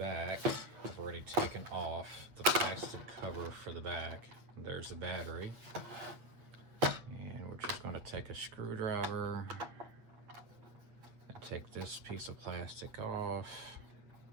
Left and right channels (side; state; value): left; late; 8.4 ms